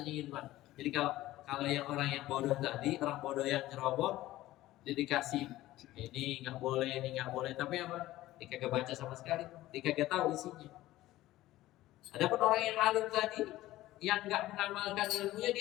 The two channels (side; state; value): right; quieter; 16.0 dB